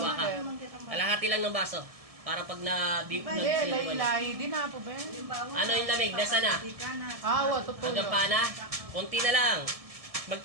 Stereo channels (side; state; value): left; late; 1.7 ms